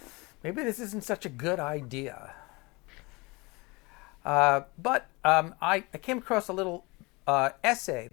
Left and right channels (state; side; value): quieter; right; 25.6 dB